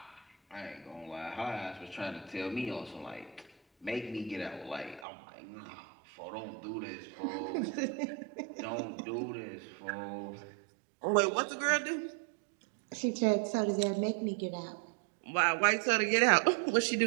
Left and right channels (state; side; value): drops out; left; at 5.1 s